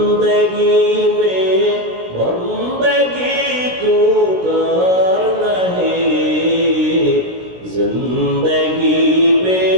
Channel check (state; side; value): late; left; 16 ms